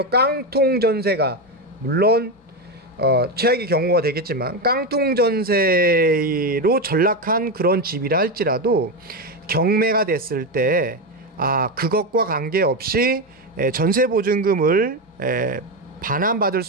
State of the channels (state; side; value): normal; both; correlation 0.12